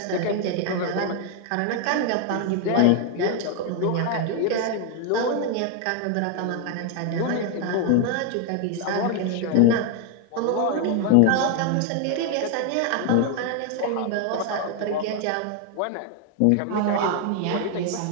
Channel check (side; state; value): both; different; correlation 0.00